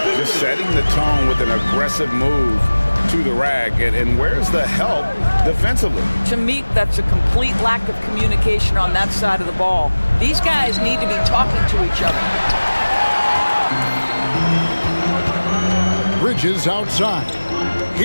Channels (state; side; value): inverted; both; correlation -1.00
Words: Just setting the tone with an aggressive move to the rack. And where's the help defensively? To me, that's a complete lack of communication on that side of the ball. These guys need to be talking to each other. Bridges outside.